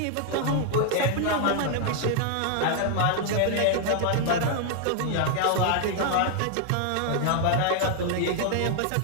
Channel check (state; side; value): different; both; correlation 0.00